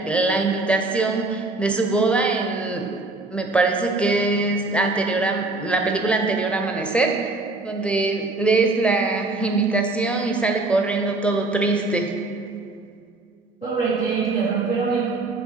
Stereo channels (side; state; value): left; quieter; 3.1 dB